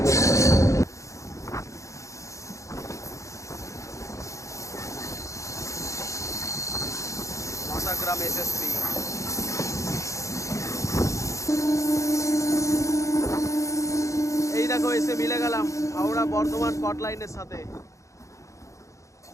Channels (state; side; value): late; right; 0.15 ms